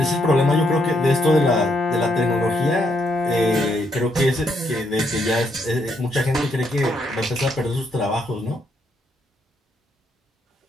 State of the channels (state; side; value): normal; both; correlation 0.75